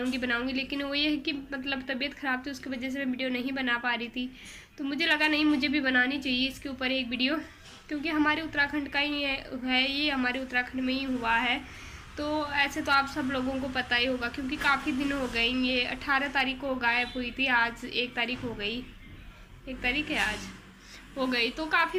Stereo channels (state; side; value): identical; both; correlation 1.00